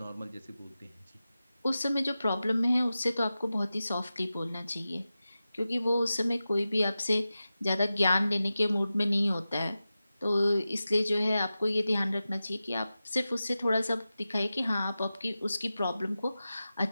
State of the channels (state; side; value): inverted; both; correlation -0.93